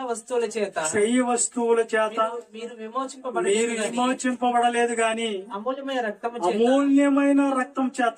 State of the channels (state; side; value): identical; both; correlation 1.00